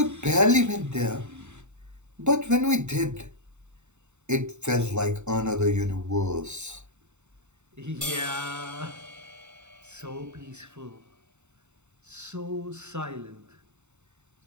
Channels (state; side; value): late; left; 0.83 ms